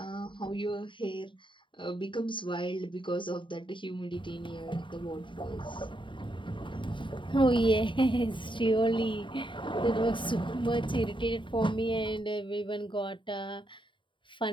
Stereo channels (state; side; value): late; right; 0.24 ms